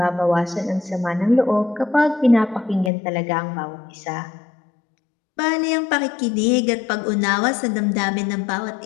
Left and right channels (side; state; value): right; drops out; at 2.9 s